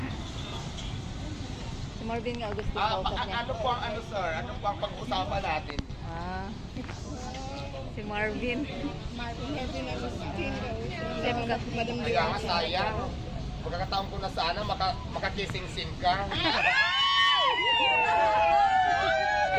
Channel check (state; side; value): identical; both; correlation 1.00